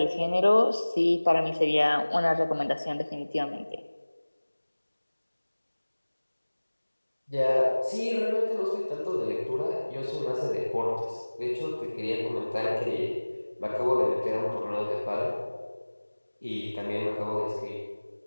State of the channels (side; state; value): both; inverted; correlation -1.00